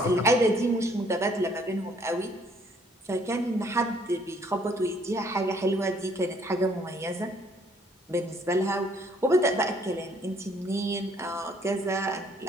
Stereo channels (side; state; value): both; normal; correlation 0.63